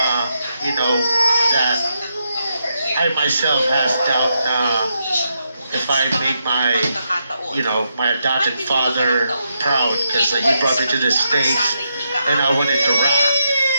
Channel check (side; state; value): both; inverted; correlation -0.82